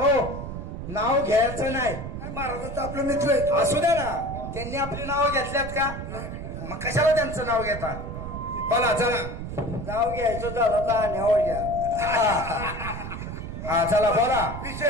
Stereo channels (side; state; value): right; noise; rumble, 7 dB below the sound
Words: नाव घ्यायचं नाही महाराजांचं आपलं मित्र आहे असू द्या ना त्यांनी आपली नावं घेतल्यात का मग कशाला त्यांचं नाव घेता बोला चला नाव घ्यायचं झालं तर न्यावं घ्या हा चला बोला